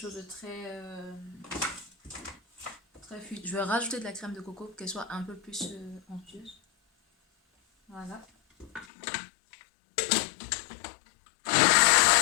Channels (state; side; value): drops out; right; at 8.8 s